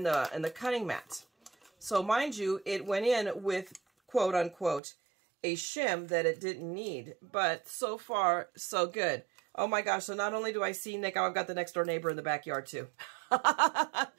cutting mat. So mind you, it went in with quote unquote a shim that it didn't need, but so far so good. Oh my gosh, so not only do I see Nick, I've got the next door neighbor in the backyard too.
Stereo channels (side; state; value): left; drops out; at 4.8 s